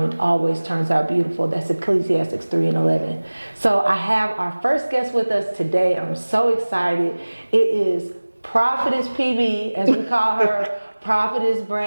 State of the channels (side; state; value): both; inverted; correlation -1.00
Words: it always turns out beautiful. That's Ecclesiastes 3:11. So I have our first guest with us today. I'm so excited. It is Prophetess PB, as we call her, Prophetess